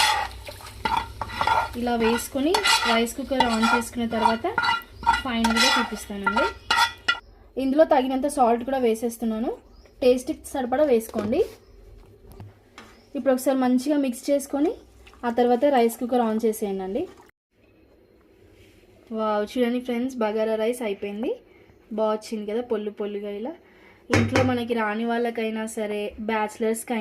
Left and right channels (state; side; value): identical; both; correlation 1.00